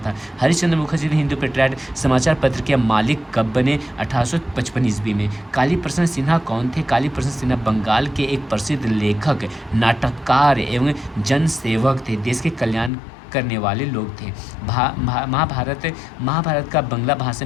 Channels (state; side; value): drops out; right; at 12.9 s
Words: हरिश्चंद्र मुखर्जी हिंदू पेट्रियाट समाचार पत्र के मालिक कब बने? 1855 ईस्वी में। काली प्रसन्न सिन्हा कौन थे? काली प्रसन्न सिन्हा बंगाल के एक प्रसिद्ध लेखक, नाटककार एवं जनसेवक थे। देश के कल्याण करने वाले लोग थे। महाभारत का बंगला भाषा